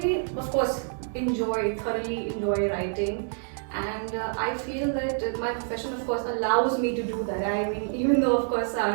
of course thoroughly enjoy writing, and I feel that my profession of course allows me to do that. I mean, even though of course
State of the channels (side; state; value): left; silent; 58 dB below the other